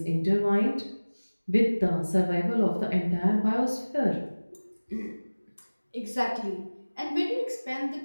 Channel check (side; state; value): both; inverted; correlation -1.00